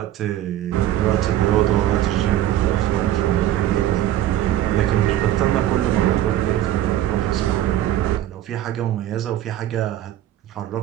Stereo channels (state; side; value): quieter; left; 12.7 dB